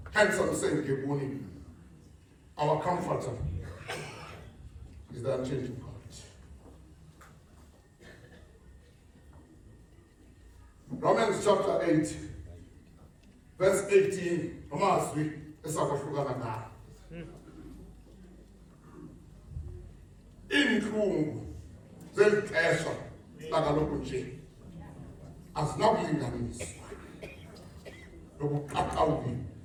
Hence I'm saying, Gebuni, our comforter is the unchanging God. Romans chapter 8, verse 18. Inhlungu zelixesha lakaloku nje azinakulinganiswa nobuqaqawuli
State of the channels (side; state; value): both; identical; correlation 1.00